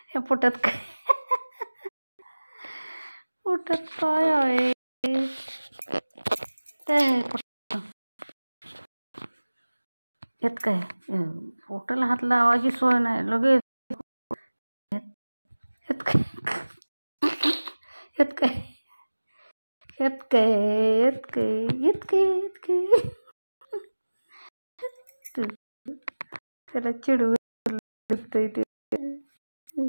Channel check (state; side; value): inverted; both; correlation -1.00